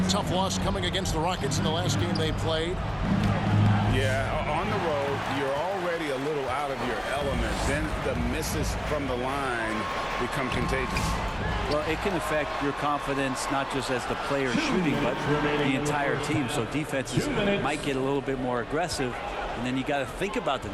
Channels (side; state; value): both; identical; correlation 1.00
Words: Tough loss coming against the Rockets in the last game they played. Yeah, on the road, you're already a little out of your element. Then the misses from the line become contagious. Well, it can affect your confidence, not just as the player shooting, but the entire team. So defenses might get a little bit more aggressive, and then you got to think about the